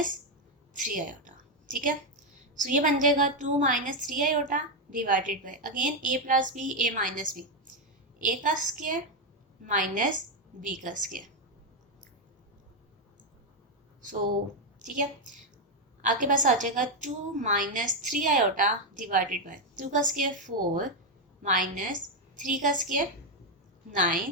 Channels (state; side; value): normal; both; correlation 0.04